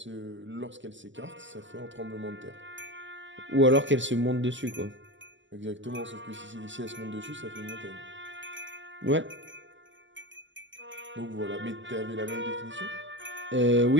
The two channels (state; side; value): late; left; 0.54 ms